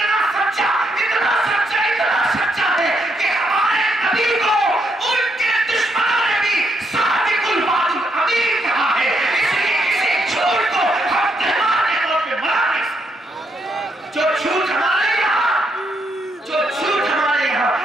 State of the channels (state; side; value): normal; both; correlation 0.77